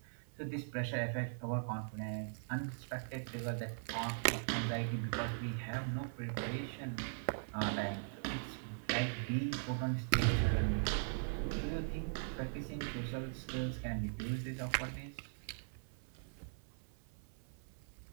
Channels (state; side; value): silent; left; 51 dB below the other